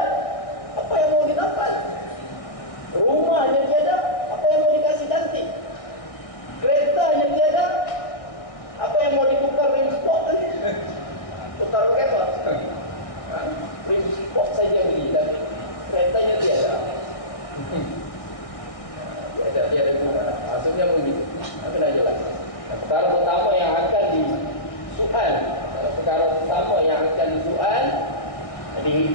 apa yang mau ditampal? Rumahnya tiada, apa yang mau dikasih cantik? Keretanya tiada, apa yang mau ditukar rim spot tu? Tukar apa? Rim spot saja beli, tapi keretanya tiada. Tiada guna. Maksudnya begitu. Apa nak jelas? Perkara pertama yang akan disoal, perkara pertama yang akan disoal,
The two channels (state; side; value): late; right; 1.6 ms